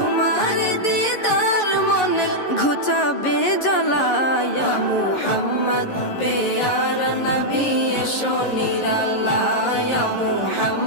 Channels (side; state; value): right; late; 11 ms